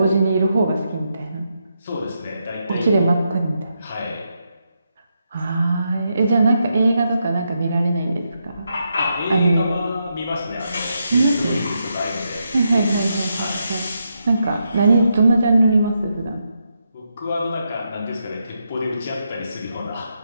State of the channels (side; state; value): both; inverted; correlation -0.83